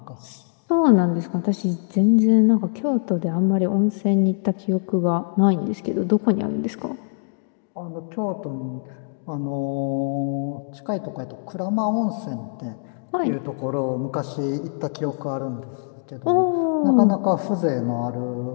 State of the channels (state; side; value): silent; right; digital silence